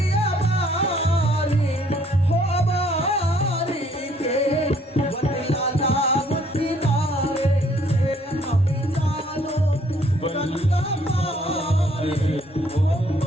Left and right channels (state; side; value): normal; both; correlation 0.63